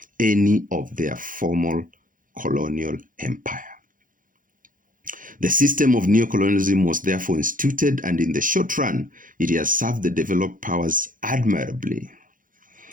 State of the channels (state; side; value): late; left; 0.39 ms